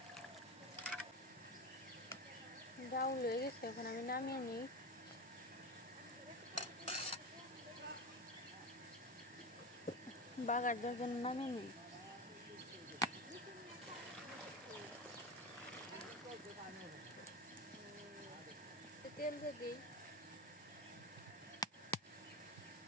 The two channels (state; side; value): normal; both; correlation 0.22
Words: ডাউল হয়ে গেছে, এখন আমি নামিয়ে নিই। বাগার যখন নামিয়ে নিই। তেল দিয়ে দিই,